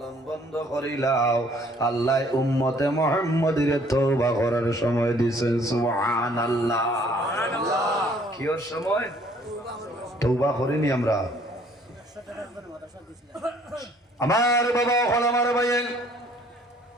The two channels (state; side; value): normal; both; correlation 0.60